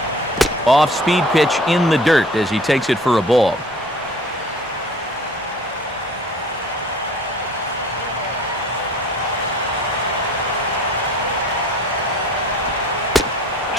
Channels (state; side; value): normal; both; correlation 0.48